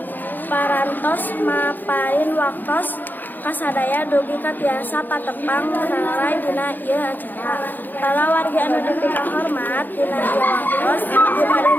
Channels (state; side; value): late; right; 0.087 ms